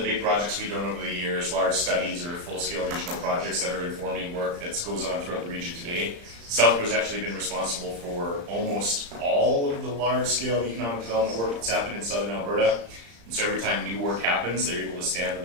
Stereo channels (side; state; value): left; late; 35 ms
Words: big projects we've done over the years, large studies or full-scale regional projects that are informing work that goes on throughout the region today. South Grove's actually been responsible for almost all of the large-scale economic development work that's happened in southern Alberta. And so every time new work happens, they're able to stand on